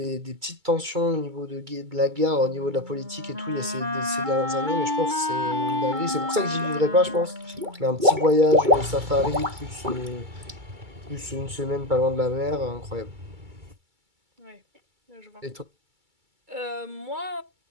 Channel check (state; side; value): late; left; 2.3 ms